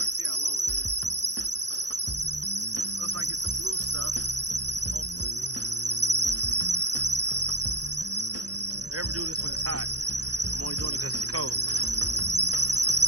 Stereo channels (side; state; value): left; late; 0.68 ms